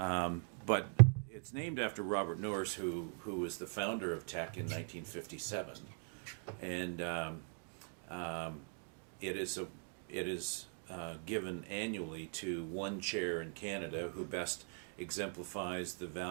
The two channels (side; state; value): left; silent; 51 dB below the other